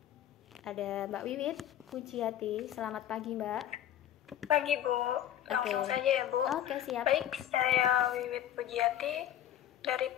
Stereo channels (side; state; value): right; quieter; 11.3 dB